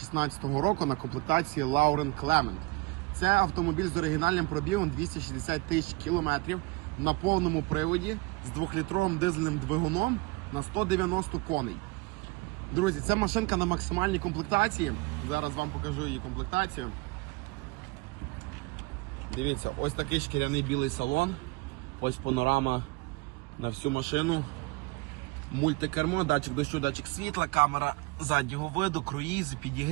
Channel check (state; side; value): quieter; left; 24.3 dB